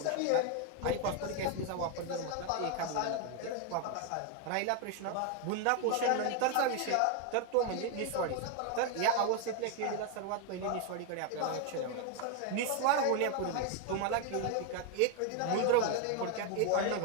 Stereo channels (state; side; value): different; both; correlation 0.01